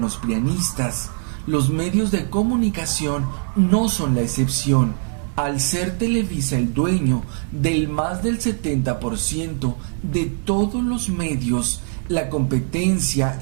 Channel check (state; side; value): silent; left; 56 dB below the other